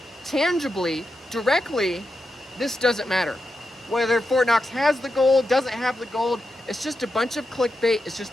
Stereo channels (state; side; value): normal; both; correlation 0.87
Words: tangibly, directly, this doesn't matter. Whether Fort Knox has the gold, doesn't have the gold, it's just a bunch of clickbait. It's